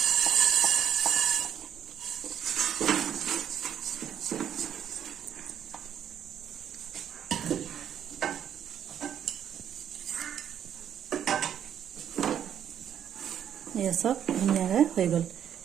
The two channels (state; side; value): quieter; left; 9.4 dB